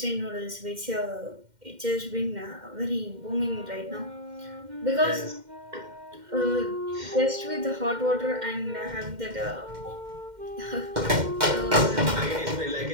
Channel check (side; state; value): left; late; 2.1 ms